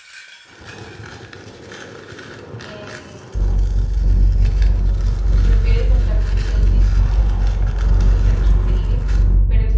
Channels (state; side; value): identical; both; correlation 1.00